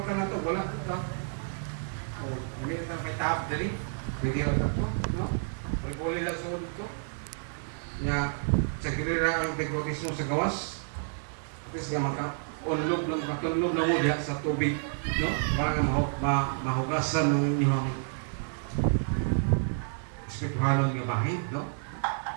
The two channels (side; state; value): left; silent; digital silence